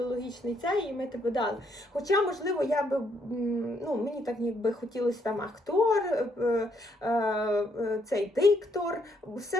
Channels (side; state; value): both; normal; correlation 0.72